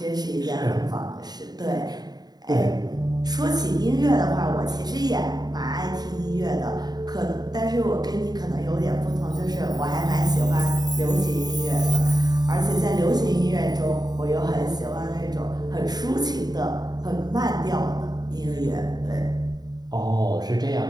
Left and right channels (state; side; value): late; left; 0.20 ms